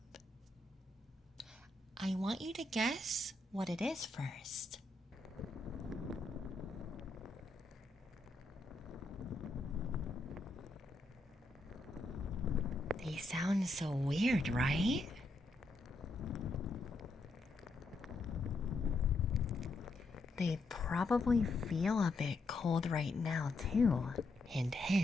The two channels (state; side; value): quieter; right; 3.0 dB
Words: I want you to guess what it is first. They sound so weird, right? They probably feel a bit cold right now, too. Hint,